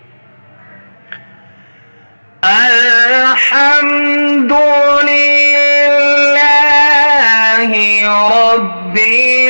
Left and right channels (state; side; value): inverted; both; correlation -1.00